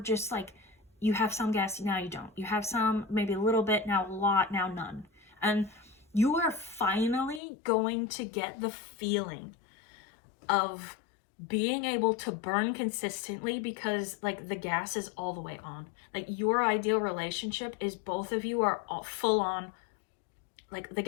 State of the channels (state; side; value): drops out; right; at 7.4 s